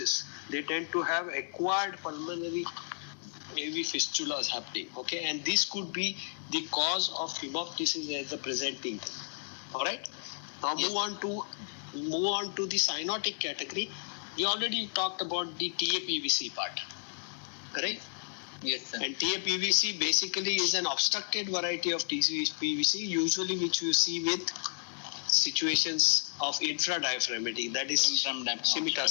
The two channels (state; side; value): silent; right; 56 dB below the other